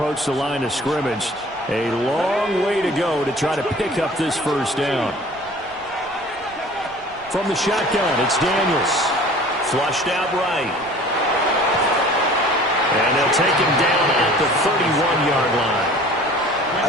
the line of scrimmage. A long way to go to try to pick up this first down. From the shotgun, it's Daniels. Flushed out right. And they'll take him down at the 31-yard line. I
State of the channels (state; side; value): noise; right; rumble, 25 dB below the sound